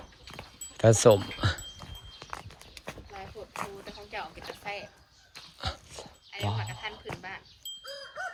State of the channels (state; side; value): identical; both; correlation 1.00